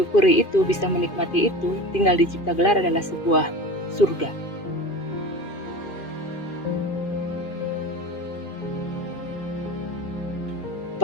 itu, bisa menikmati itu, tinggal di Cipta Gelar adalah sebuah surga.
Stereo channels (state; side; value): late; right; 2.5 ms